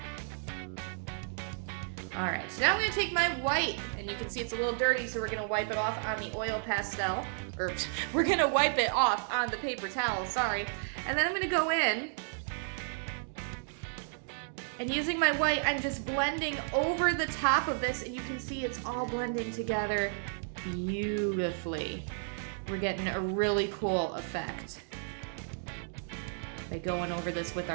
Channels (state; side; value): silent; left; digital silence